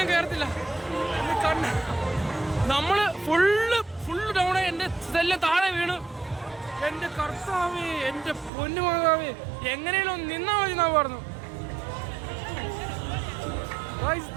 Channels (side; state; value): left; drops out; at 8.5 s